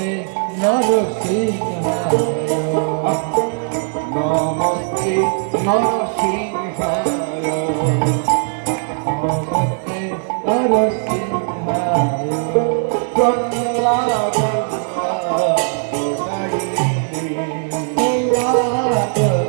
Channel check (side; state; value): left; silent; 59 dB below the other